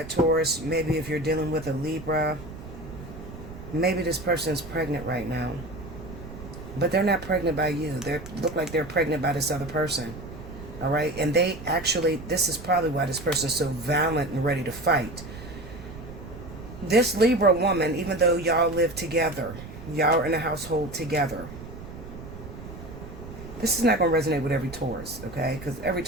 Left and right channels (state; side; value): noise; right; rumble, 13 dB below the sound